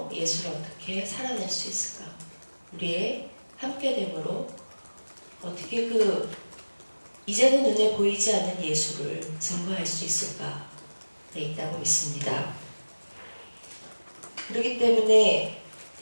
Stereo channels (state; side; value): inverted; both; correlation -1.00